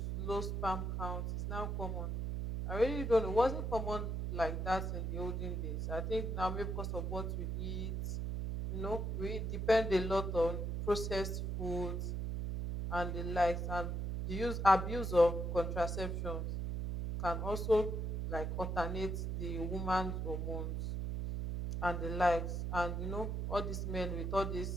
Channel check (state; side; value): noise; right; hum, 1 dB below the sound